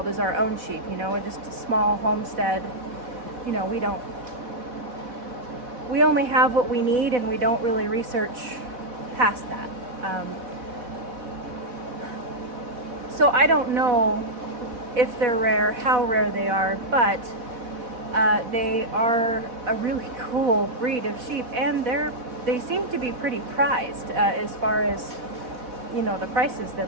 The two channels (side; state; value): left; late; 4.1 ms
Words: is our own sheep, just a small homestead. We only have what we need, and we don't really research past that. So I don't know if they're rare, how rare they are, but they are a really cool breed of sheep, and they seem to be pretty prized as far as the prices